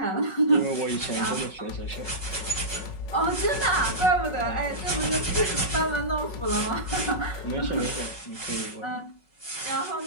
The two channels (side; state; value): right; late; 5.4 ms